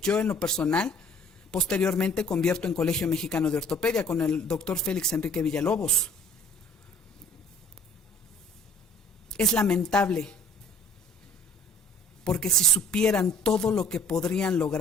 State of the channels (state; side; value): normal; both; correlation 0.53